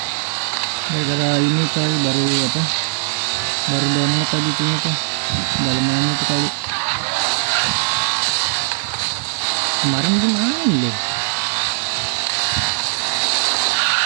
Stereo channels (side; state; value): left; silent; digital silence